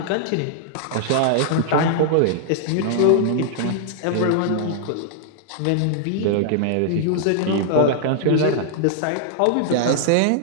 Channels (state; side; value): different; both; correlation -0.01